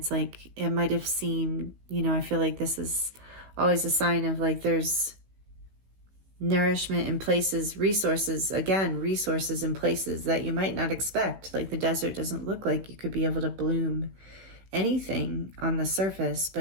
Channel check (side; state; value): left; late; 15 ms